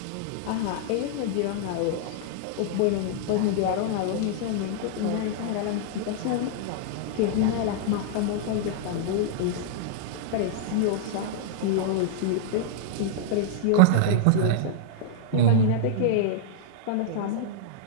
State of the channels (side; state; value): both; different; correlation -0.01